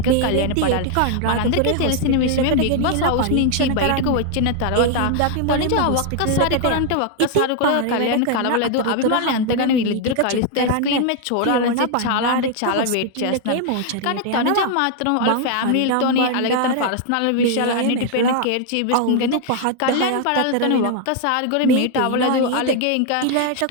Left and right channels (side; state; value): both; different; correlation 0.00